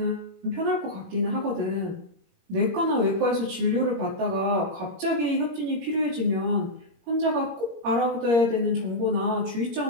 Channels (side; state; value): left; late; 21 ms